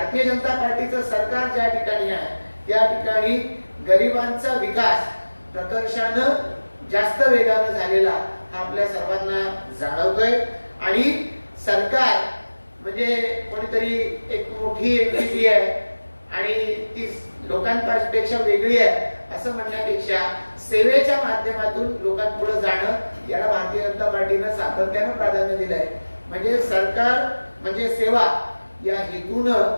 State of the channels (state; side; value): inverted; both; correlation -1.00